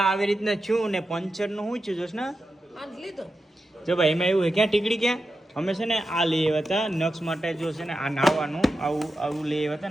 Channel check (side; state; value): both; normal; correlation 0.90